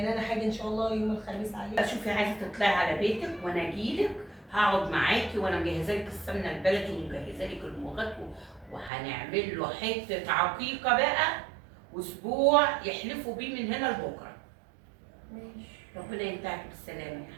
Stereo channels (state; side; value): drops out; left; at 8.9 s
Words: انا حاجه ان شاء الله يوم الخميس عليك. شوفي عايزه تطلعي على بيتك وانا اجيلك، هقعد معاكي وانا مجهزه لك السمنه البلدي ومجهزه لك المغات، وهنعمل له حته عقيقه بقى، واسبوع يحلفوا بيه من هنا لبكره. ماشي. ربنا ينتهك بالسلامه يا